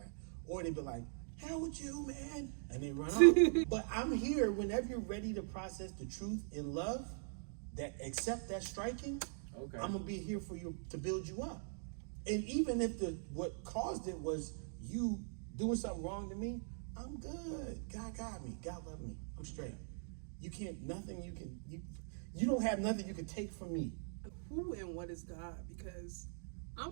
or they be like, hell with you, man, and they run off. But I'm here whenever you're ready to process the truth in love, that accept that striking. Okay. I'm gonna be here for you to build you up. And even if what caused it was you doing something wrong to me, I'm good. God got me. God love me. I'm straight. You don't have nothing you can take from me. Who and what is God? Because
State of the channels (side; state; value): left; silent; digital silence